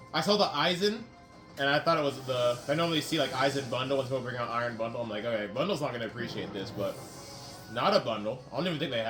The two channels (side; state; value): both; identical; correlation 1.00